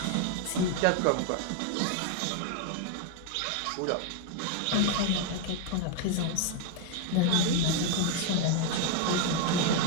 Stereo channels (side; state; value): both; different; correlation 0.01